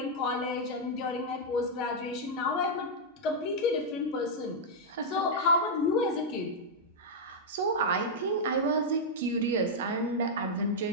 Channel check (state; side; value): normal; both; correlation -0.05